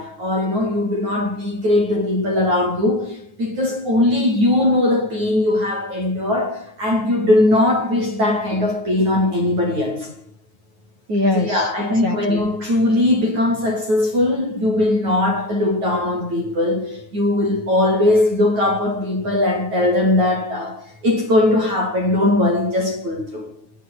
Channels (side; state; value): left; late; 9.3 ms